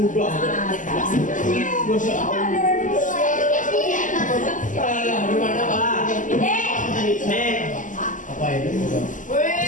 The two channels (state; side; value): late; right; 0.37 ms